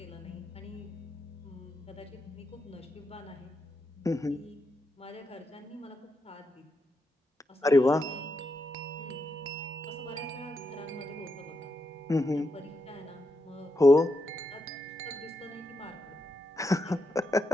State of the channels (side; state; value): both; normal; correlation 0.83